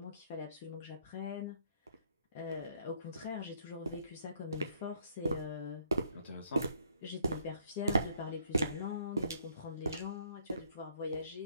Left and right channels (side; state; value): both; inverted; correlation -0.65